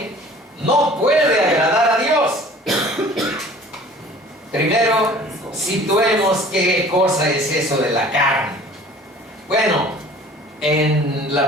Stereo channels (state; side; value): normal; both; correlation 0.48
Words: no puede agradar a Dios? Primero, situemos qué cosa es eso de la carne. Bueno, en